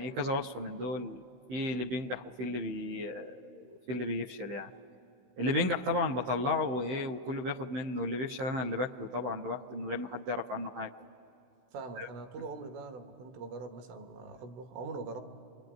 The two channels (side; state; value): left; late; 16 ms